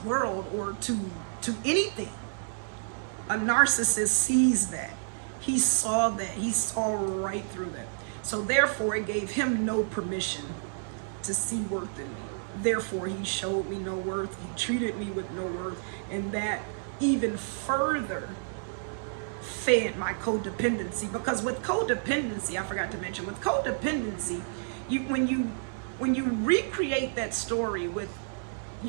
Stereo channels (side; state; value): left; silent; digital silence